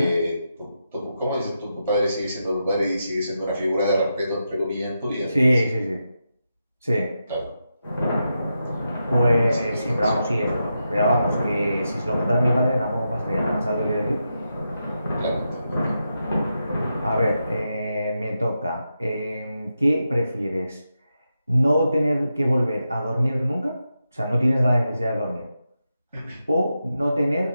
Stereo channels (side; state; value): both; inverted; correlation -0.87